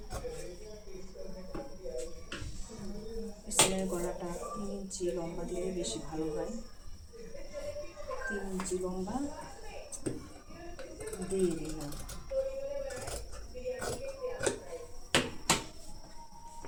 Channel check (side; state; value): both; identical; correlation 1.00